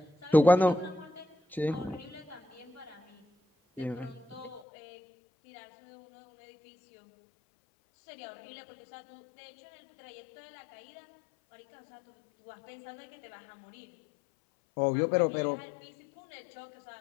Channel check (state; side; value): drops out; right; at 4.7 s